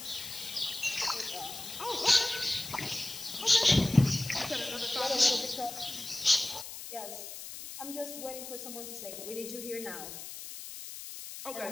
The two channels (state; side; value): noise; left; hiss, 10 dB below the sound